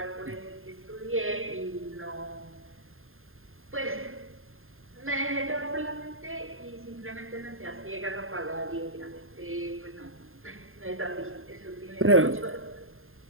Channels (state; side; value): late; left; 0.61 ms